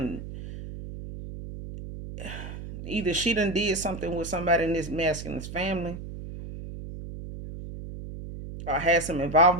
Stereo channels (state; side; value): noise; right; hum, 10 dB below the sound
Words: did something with somebody in this masculine's family, or had some